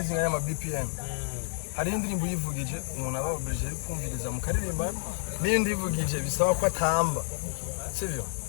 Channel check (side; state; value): right; silent; 57 dB below the other